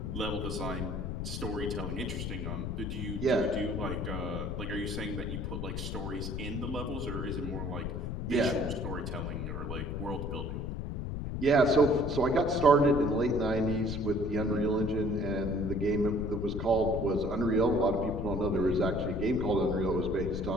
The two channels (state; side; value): noise; left; rumble, 4 dB below the sound